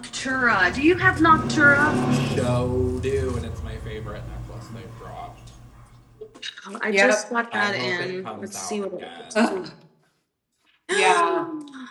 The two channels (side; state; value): both; identical; correlation 1.00